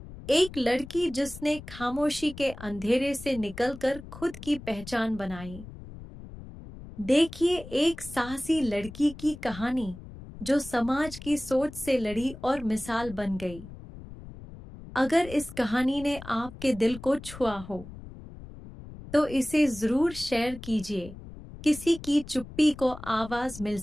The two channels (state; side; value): noise; left; rumble, 15 dB below the sound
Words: एक लड़की जिसने खामोशी के अंधेरे से निकलकर खुद की पहचान बनाई। देखिए एक साहसी लड़की की कहानी, जो समाज की सोच से लड़ी और मिसाल बन गई। अगर इस कहानी ने आपके दिल को छुआ हो, तो इसे जरूर शेयर कीजिए। किसी की चुप्पी को आवाज मिल